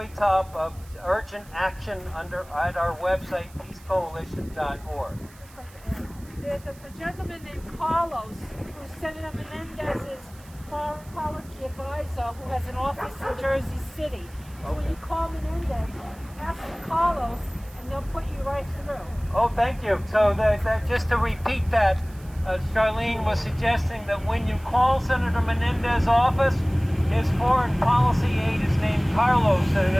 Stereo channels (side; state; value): right; noise; hiss, 25 dB below the sound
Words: top of urgent action at our website, peacecoalition.org. There's a gentleman named Carlos who's Senator Menendez's foreign policy advisor who has an office in Jersey City. So when you call Menendez, ask Carlos and they'll put you right through. Oh, thank you. So just to repeat that, Charlene was suggesting that when you call Senator Menendez's office, his foreign policy aide is named Carlos, and